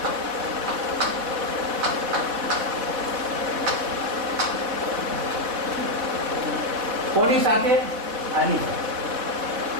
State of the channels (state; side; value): late; left; 4.1 ms